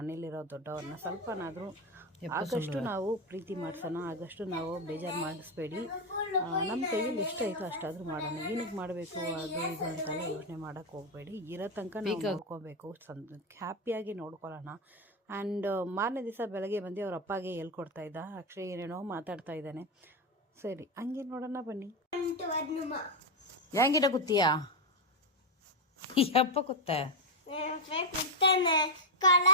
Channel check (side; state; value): both; normal; correlation 0.06